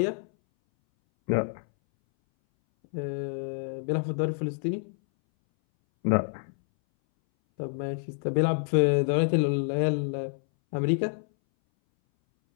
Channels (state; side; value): silent; right; 60 dB below the other